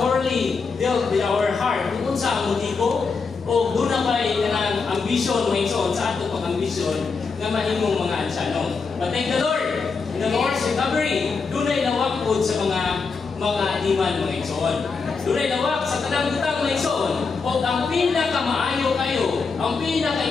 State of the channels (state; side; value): quieter; right; 4.8 dB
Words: dealt with our heart kung sa ang motibo o doon na ba'y kanang ambisyon mga igsoon sa ato pang ambisyon nga mahimong mga ansyanong. But thank the Lord, in the Lord's recovery, doon ay nawak po sa mga iman mga igsoon. Doon ay nawak sa tanang butang mga igsoon o ang pinakamaayo kayo, ang